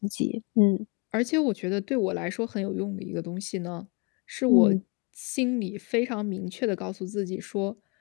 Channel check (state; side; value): quieter; right; 32.4 dB